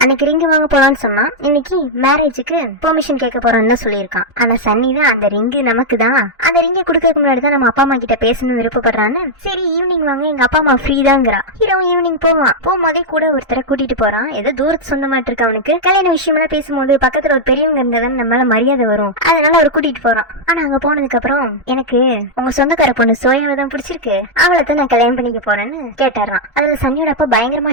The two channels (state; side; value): normal; both; correlation -0.02